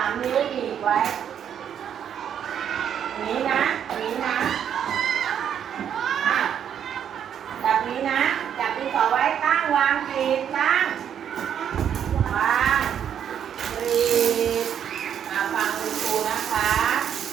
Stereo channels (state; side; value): quieter; left; 8.9 dB